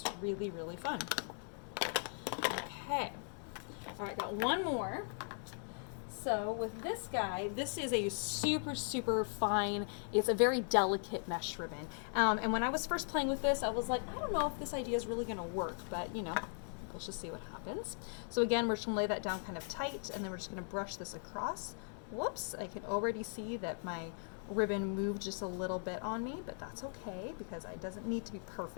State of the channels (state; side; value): silent; right; 52 dB below the other